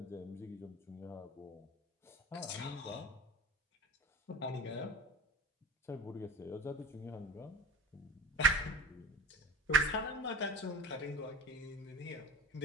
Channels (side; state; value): both; normal; correlation 0.36